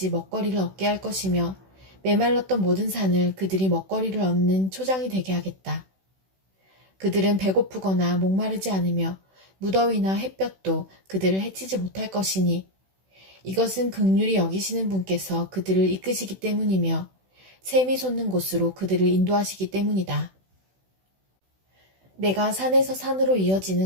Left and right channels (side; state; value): left; late; 16 ms